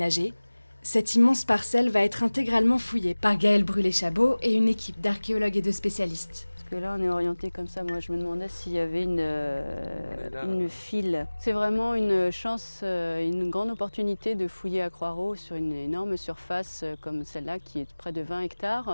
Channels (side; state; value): both; inverted; correlation -1.00